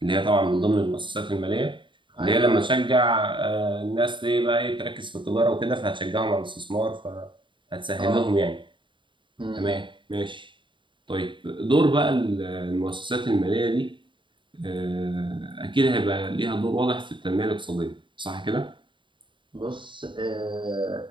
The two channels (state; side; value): late; left; 0.23 ms